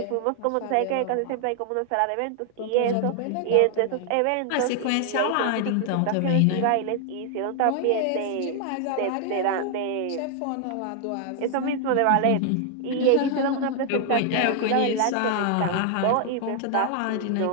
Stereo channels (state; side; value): different; both; correlation 0.00